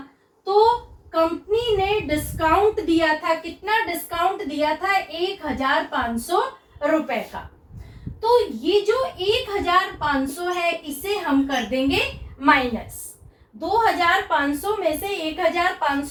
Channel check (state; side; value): identical; both; correlation 1.00